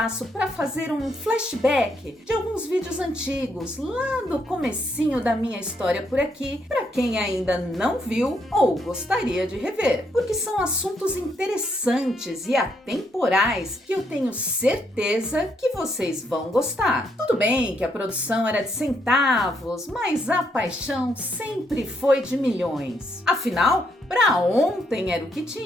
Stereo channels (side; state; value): both; normal; correlation 0.75